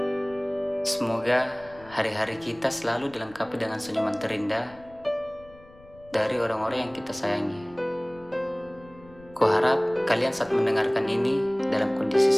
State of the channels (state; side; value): noise; left; rumble, 24 dB below the sound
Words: Semoga hari-hari kita selalu dilengkapi dengan senyuman terindah dari orang-orang yang kita sayangi. Kuharap kalian saat mendengarkan ini dalam kondisi